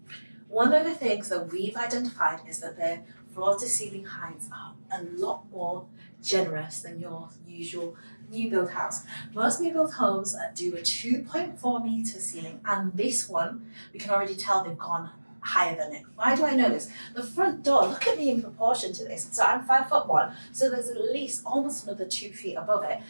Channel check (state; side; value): inverted; both; correlation -1.00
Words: one of the things that we've identified is that their floor to ceiling heights are a lot more generous than your usual new build house. Most new build homes do a 2.4 meter ceiling, and this one, we can already tell they've gone higher than it. Why do I know this? The front door, look at me in proportion to this. So I'm 5'1", so there's at least almost another 2 feet above it.